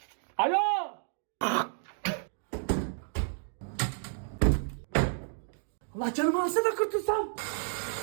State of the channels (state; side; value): silent; left; 57 dB below the other